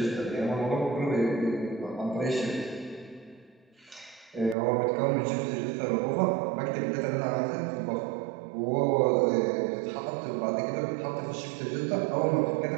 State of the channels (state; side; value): drops out; left; at 4.5 s